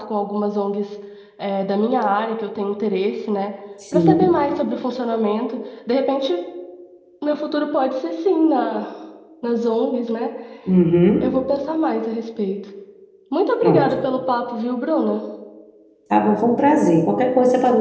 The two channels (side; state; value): both; identical; correlation 1.00